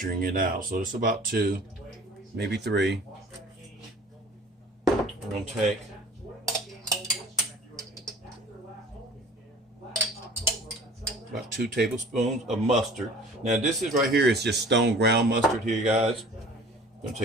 it out, so it's about 2, maybe 3. We're gonna take about 2 tablespoons of mustard. Now this is right here is just stone ground mustard here, guys. I'm gonna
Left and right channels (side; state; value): both; normal; correlation 0.46